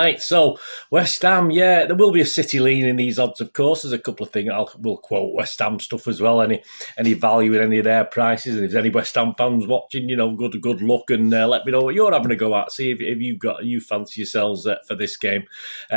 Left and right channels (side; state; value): both; inverted; correlation -1.00